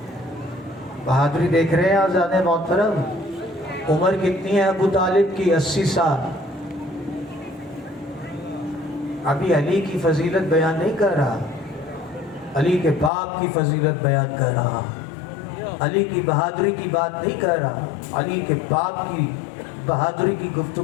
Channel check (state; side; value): drops out; right; at 13.1 s